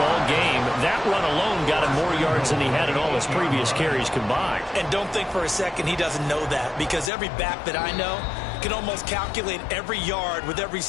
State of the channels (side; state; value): right; drops out; at 7.1 s